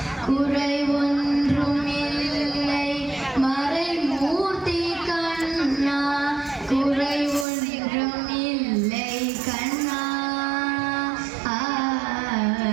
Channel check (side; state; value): left; drops out; at 7.5 s